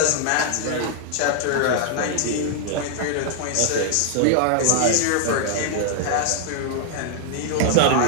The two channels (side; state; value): both; different; correlation -0.01